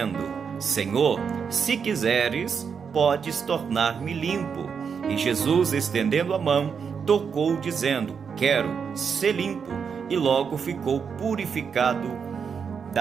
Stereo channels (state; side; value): quieter; left; 6.4 dB